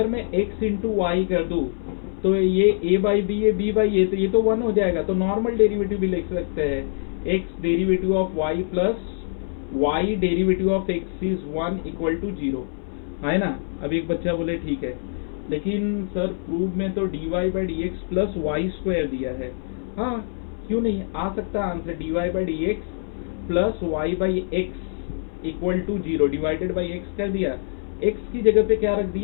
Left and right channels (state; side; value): silent; right; 61 dB below the other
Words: मैं x इंटू वाई कर दूँ तो ये a/b ये b/a, तो ये तो 1 हो जाएगा, तो नॉर्मल डेरिवेटिव भी लिख सकते हैं, x derivative of y plus y derivative of x is 1 equal to 0, है ना। अब एक बच्चा बोले ठीक है, लेकिन सर प्रूव में तो dy/dx प्लस वाई स्क्वायर दिया है। हाँ, क्यों नहीं आ सकता answer, dy/dx plus y/x equal to 0, divided by x कर दिया, x की जगह पे क्या रख